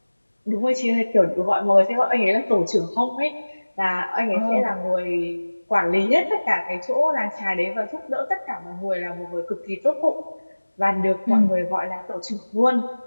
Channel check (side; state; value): both; inverted; correlation -1.00